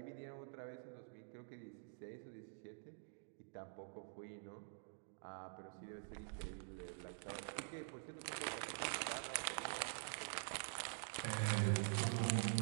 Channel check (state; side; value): silent; left; digital silence